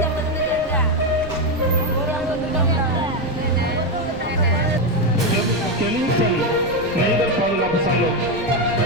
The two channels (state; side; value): noise; left; rumble, 16 dB below the sound